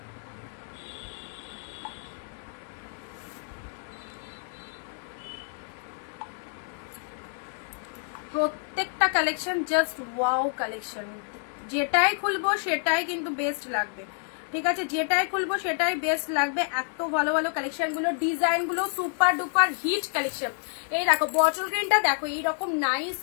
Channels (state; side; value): silent; right; 59 dB below the other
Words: প্রত্যেকটা কালেকশন জাস্ট ওয়াও কালেকশন, যেটাই খুলবো সেটাই কিন্তু বেস্ট লাগবে, ঠিক আছে? যেটাই খুলবো সেটাই বেস্ট লাগবে। এত ভালো ভালো কালেকশন গুলো, ডিজাইন গুলো সুপার ডুপার হিট কালেকশন। এই দেখো বটল গ্রিনটা দেখো, এইরকম নাইস